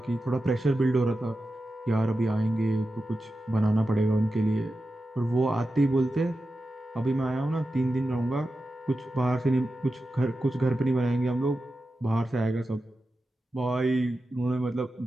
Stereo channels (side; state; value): both; normal; correlation 0.91